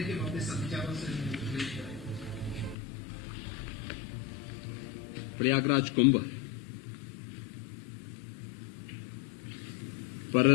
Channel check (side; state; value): right; drops out; at 2.8 s